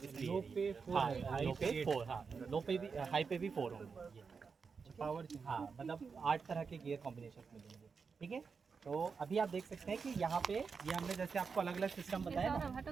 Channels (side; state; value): left; quieter; 5.4 dB